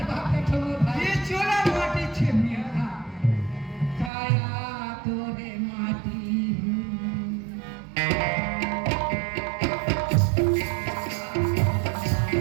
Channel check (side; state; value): left; drops out; at 4.1 s